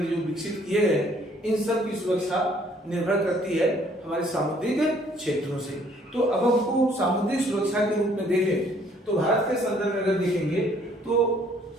जो विकसित किए गए, इन सब की सुरक्षा निर्भर करती है हमारे सामुद्रिक क्षेत्रों से। तो अब हमको सामुद्रिक सुरक्षा के रूप में देखें तो भारत के संदर्भ में अगर देखेंगे तो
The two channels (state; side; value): normal; both; correlation 0.62